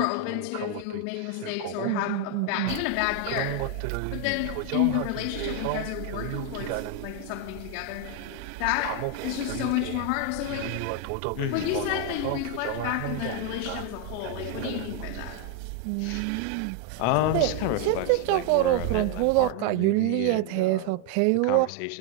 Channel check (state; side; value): different; both; correlation 0.01